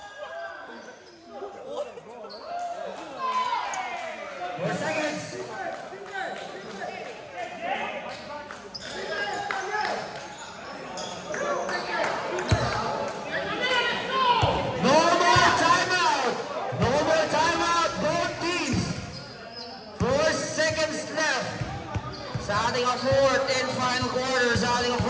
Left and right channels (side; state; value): both; identical; correlation 1.00